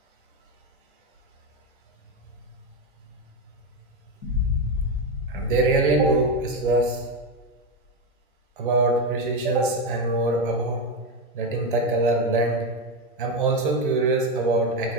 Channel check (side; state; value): both; normal; correlation 0.11